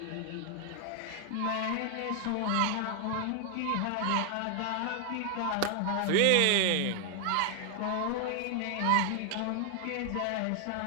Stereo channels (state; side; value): different; both; correlation 0.00